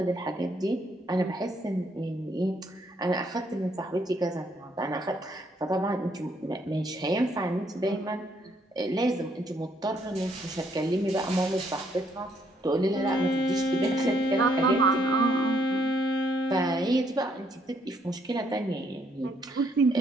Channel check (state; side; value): normal; both; correlation 0.70